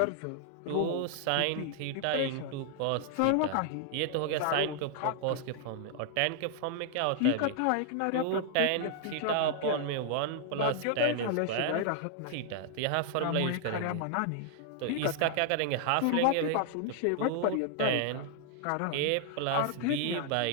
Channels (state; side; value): different; both; correlation 0.00